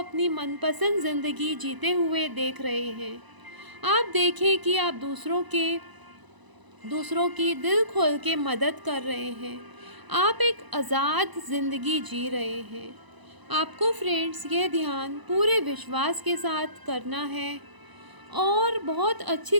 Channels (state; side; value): late; left; 1.0 ms